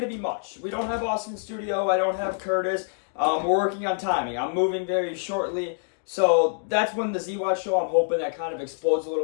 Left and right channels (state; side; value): silent; right; digital silence